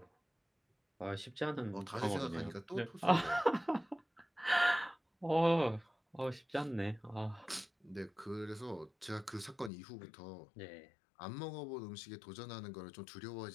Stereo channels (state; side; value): drops out; right; at 9.7 s